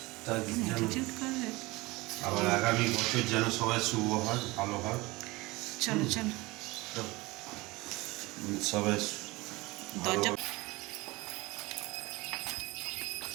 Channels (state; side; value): quieter; left; 22.1 dB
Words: তার যেন অ্যাটিটিউড করে। আবার আগামী বছর যেন সবাই শুভ হয়, ভালো হয়। চলো চলো, তো সবাই ভালো দরজা